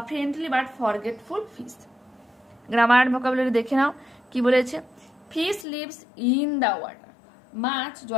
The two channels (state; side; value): drops out; right; at 5.7 s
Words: friendly but forgetful fish. Grammar vocabulary দেখে নাও কি বলেছে। Fish lives in the water, মাছ